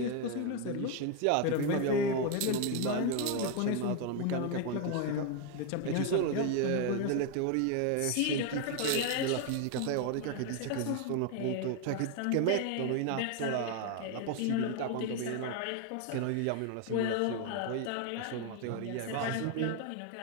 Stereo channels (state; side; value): different; both; correlation 0.01